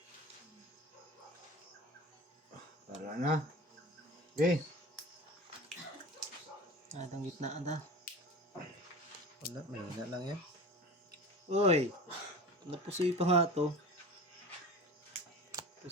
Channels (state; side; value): normal; both; correlation 0.34